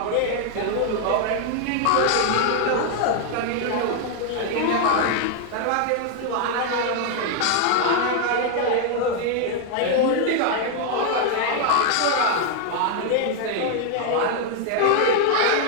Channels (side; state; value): both; different; correlation 0.00